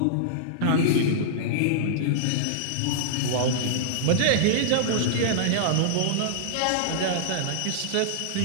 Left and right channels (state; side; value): different; both; correlation -0.02